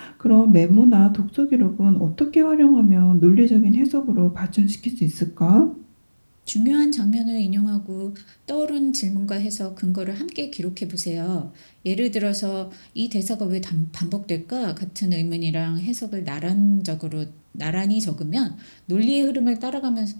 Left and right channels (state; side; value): inverted; both; correlation -1.00